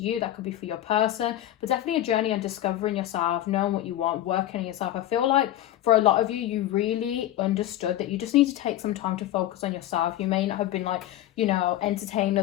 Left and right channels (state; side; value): quieter; right; 13.4 dB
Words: that could be for your person, but definitely a journey on discovering yourself, knowing what you want, working on yourself. I feel like for a lot of you, you really understood that you just need to take some time to focus on yourself. You may not have been like, you know, entertaining